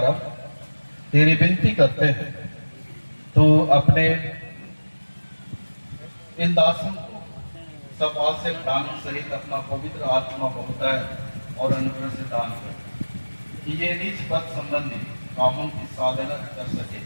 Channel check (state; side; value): inverted; both; correlation -1.00